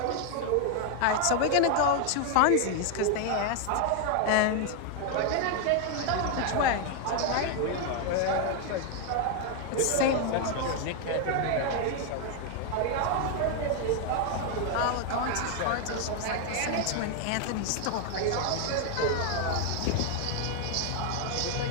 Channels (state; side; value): different; both; correlation 0.00